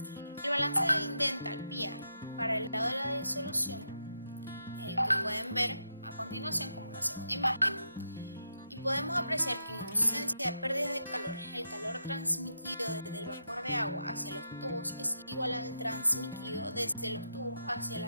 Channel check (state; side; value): inverted; both; correlation -0.83